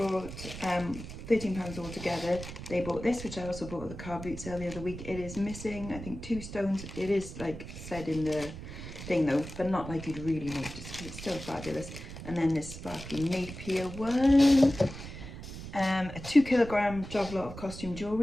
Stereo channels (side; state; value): right; noise; rumble, 11 dB below the sound